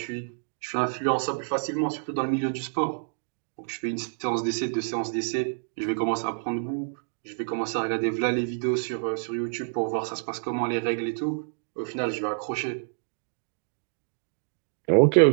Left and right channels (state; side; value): silent; left; digital silence